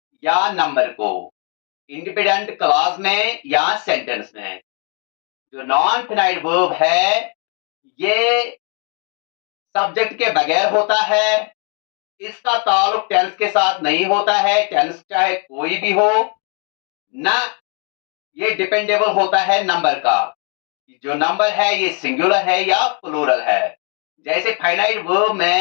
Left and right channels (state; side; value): quieter; right; 38.5 dB